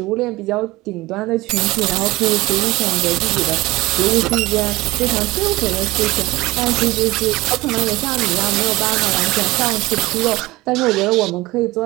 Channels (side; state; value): left; quieter; 19.8 dB